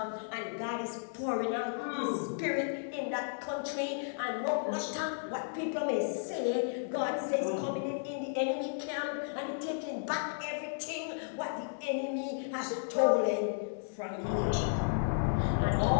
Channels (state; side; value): silent; right; digital silence